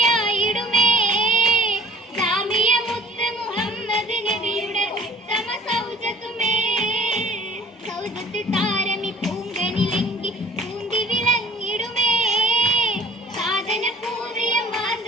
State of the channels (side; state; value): both; normal; correlation 0.49